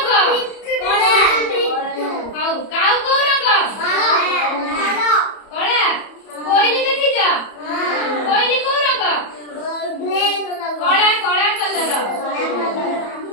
ହଉ କାଉ କୋଉ ରଙ୍ଗ କଳା କୋଇଲି ଦେଖିଛ କୋଇଲି କୋଉ ରଙ୍ଗ କଳା କଳା କଲର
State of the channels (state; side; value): late; right; 31 ms